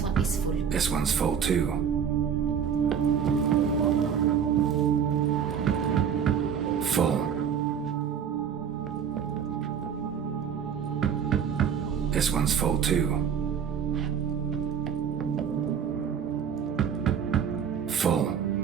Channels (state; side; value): quieter; left; 7.8 dB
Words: one is full. This one's full too. Full. This one's full too. Full.